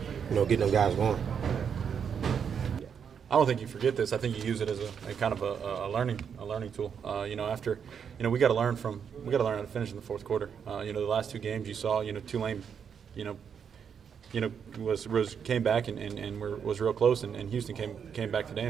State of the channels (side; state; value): left; quieter; 7.3 dB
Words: get them guys going. I don't think you forget this. I think you use it as a kind of a learning tool. After we got to learn how to finish in the fourth quarter. The last 2 games you saw, Tulane, came back and was real close, and Houston came back today